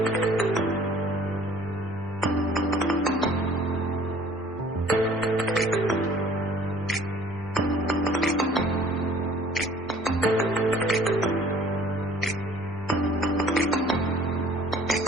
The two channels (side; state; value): both; normal; correlation 0.53